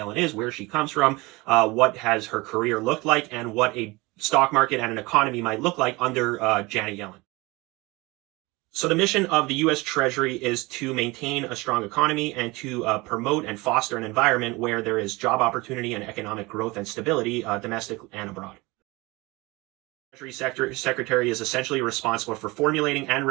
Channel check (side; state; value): left; quieter; 23.2 dB